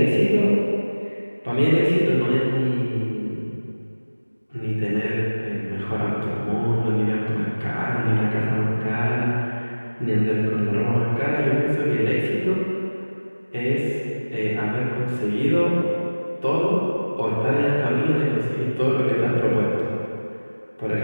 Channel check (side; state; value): both; inverted; correlation -1.00